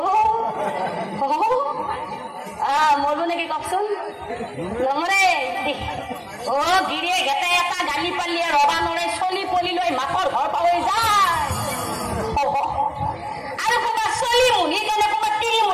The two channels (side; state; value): both; identical; correlation 1.00